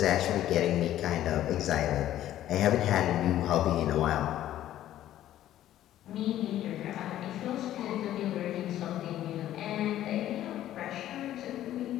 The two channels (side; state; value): right; quieter; 12.8 dB